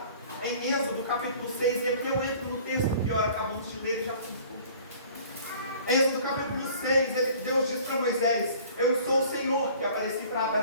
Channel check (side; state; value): both; inverted; correlation -0.50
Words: em Êxodo capítulo 6, e aqui eu entro no texto que acabamos de ler e já fui. Êxodo capítulo 6, Deus diz para Moisés: eu sou o Senhor que apareci para